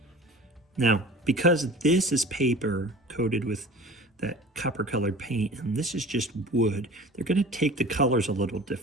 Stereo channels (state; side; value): normal; both; correlation 0.41